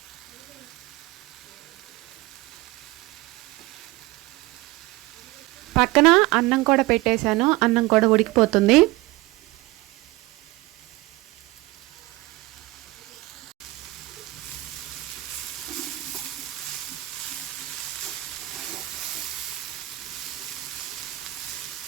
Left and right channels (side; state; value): left; quieter; 19.7 dB